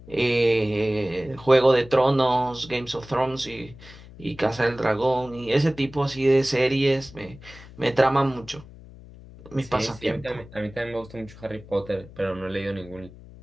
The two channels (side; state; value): left; noise; hum, 19 dB below the sound